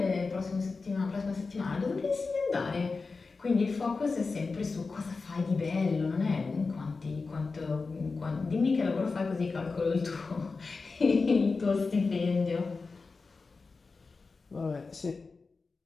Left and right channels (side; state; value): right; quieter; 4.2 dB